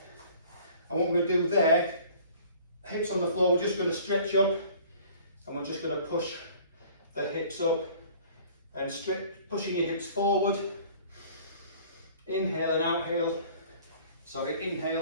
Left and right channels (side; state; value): both; inverted; correlation -0.50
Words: And what we're going to do there, hips on the floor, we're just going to stretch up, and we're just going to push the hips up and pushing your hips forward. Inhale and exhale. Sorry,